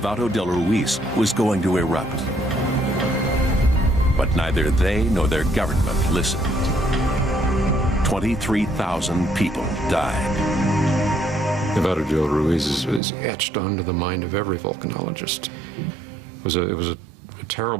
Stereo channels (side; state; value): left; drops out; at 13.0 s